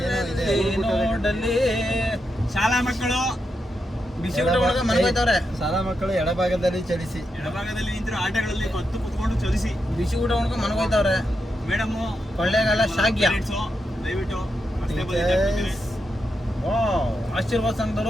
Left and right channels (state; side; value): normal; both; correlation 0.85